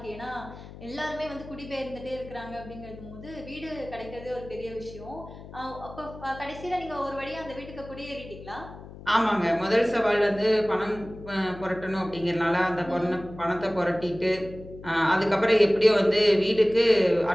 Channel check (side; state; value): left; noise; hum, 16 dB below the sound